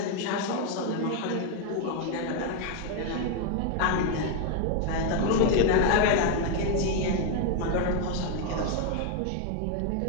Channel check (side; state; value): both; different; correlation 0.01